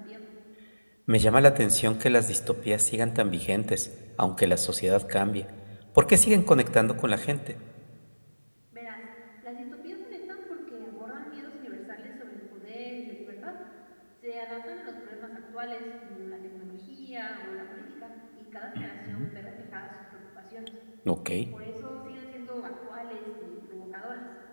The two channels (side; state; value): both; inverted; correlation -1.00